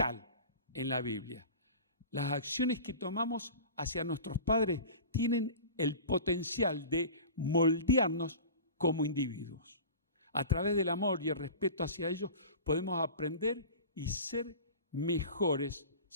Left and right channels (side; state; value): both; inverted; correlation -0.36